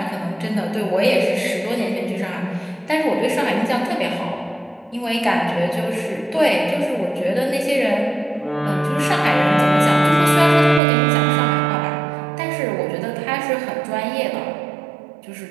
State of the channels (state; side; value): drops out; left; at 10.8 s